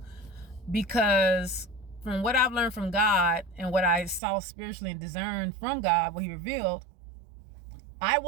because from what I've learned from God and what I saw spiritually and discerned from God, what he revealed, I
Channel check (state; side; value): drops out; left; at 4.2 s